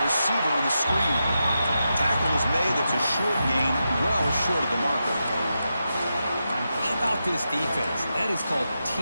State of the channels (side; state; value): both; inverted; correlation -0.88